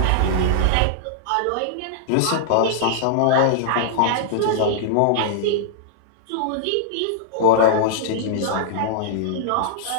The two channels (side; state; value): both; different; correlation -0.01